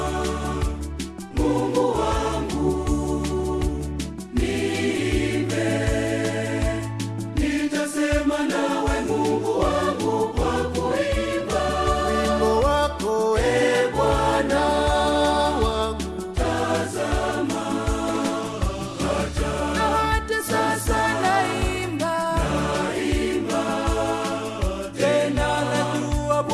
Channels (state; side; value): identical; both; correlation 1.00